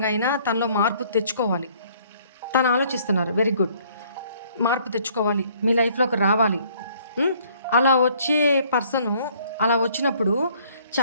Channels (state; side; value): inverted; both; correlation -0.61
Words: అయినా తనలో మార్పు తెచ్చుకోవాలి. తను ఆలోచిస్తున్నారు. Very good. మార్పు తెచ్చుకోవాలి, మీ లైఫ్లోకి రావాలి. అలా వచ్చే పర్సను అలా వచ్చినప్పుడు